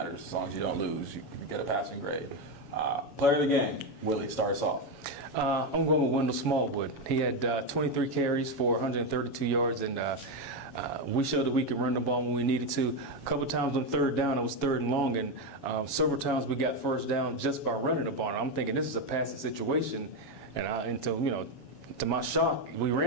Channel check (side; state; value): left; late; 7.1 ms